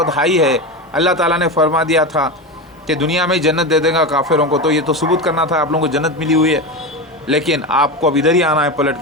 हाई है। अल्लाह ताला ने फरमा दिया था कि दुनिया में जन्नत दे देगा काफिरों को, तो ये तो सबूत करना था आप लोगों को जन्नत मिली हुई है। लेकिन आपको अब इधर ही आना है पलट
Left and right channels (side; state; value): both; normal; correlation 0.20